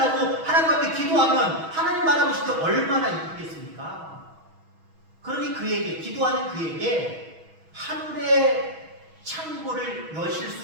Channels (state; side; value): late; left; 6.2 ms